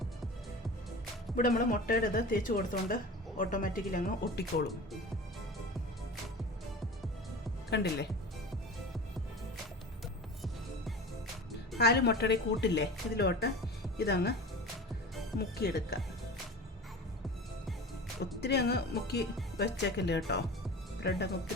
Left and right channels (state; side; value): normal; both; correlation 0.34